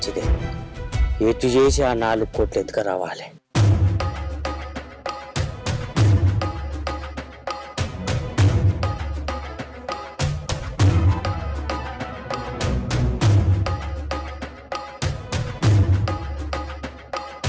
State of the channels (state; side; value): identical; both; correlation 1.00